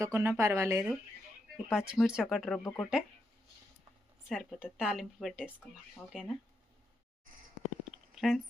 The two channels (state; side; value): normal; both; correlation 0.83